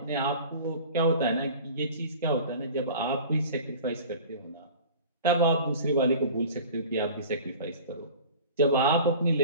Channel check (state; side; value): inverted; both; correlation -0.41